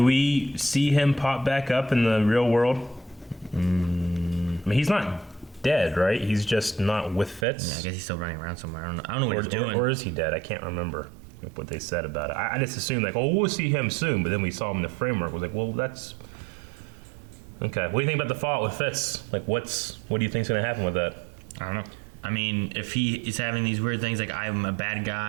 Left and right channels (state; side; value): drops out; left; at 7.5 s